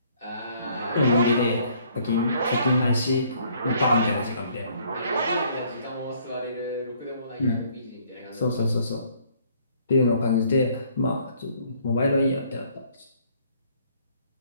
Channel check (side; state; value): both; inverted; correlation -0.62